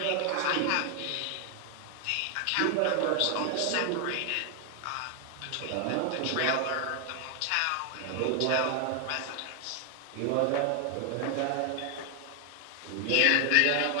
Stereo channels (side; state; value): both; different; correlation 0.00